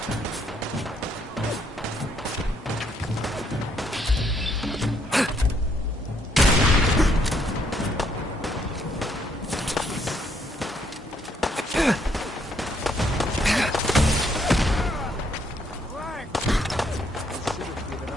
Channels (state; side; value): normal; both; correlation 0.71